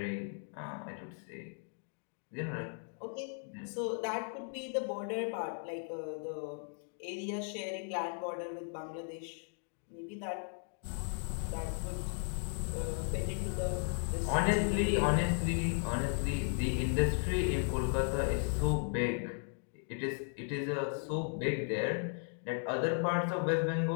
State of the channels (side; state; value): right; silent; 54 dB below the other